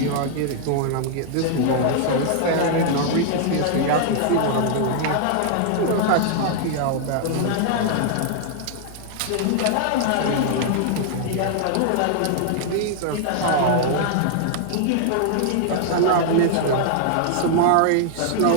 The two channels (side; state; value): both; different; correlation -0.01